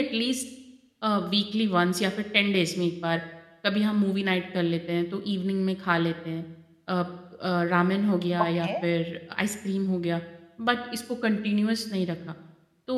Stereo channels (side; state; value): both; identical; correlation 1.00